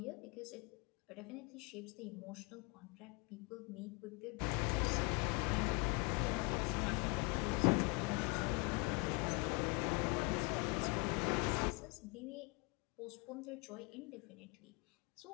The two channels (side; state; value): right; quieter; 30.9 dB